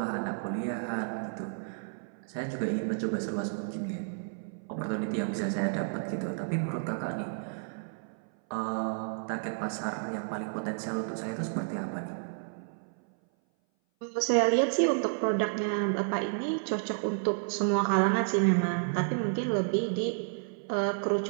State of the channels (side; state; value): left; silent; 57 dB below the other